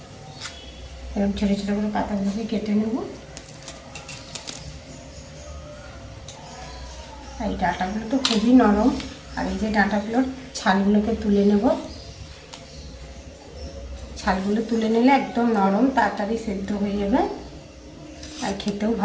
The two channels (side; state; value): both; identical; correlation 1.00